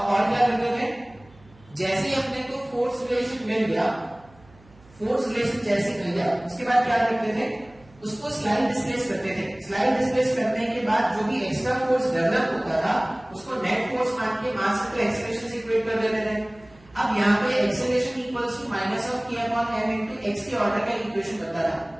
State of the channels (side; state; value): right; noise; hum, 27 dB below the sound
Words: क्या करते थे, जैसे ही अपने को फोर्स रिलेशन मिल गया, फोर्स रिलेशन जैसे मिल गया उसके बाद क्या करते थे, उसको स्लाइड डिस्प्लेस करते थे। स्लाइड डिस्प्लेस करने के बाद जो भी एक्स्ट्रा फोर्स डेवलप होता था उसको नेट फोर्स मान के मास को एक्सेलरेशन से इक्वेट कर देते थे। अब यहाँ पे acceleration equals to minus of k upon m into x के ऑर्डर का इक्वेशन बनता था।